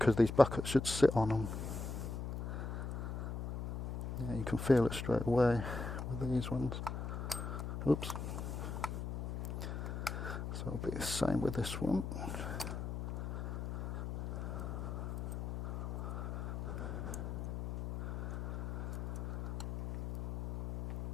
these buckets should sit on them. Yeah, you can feel it straight away with these ones. Oops. So it'll be the same with this one.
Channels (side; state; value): left; noise; hum, 4 dB below the sound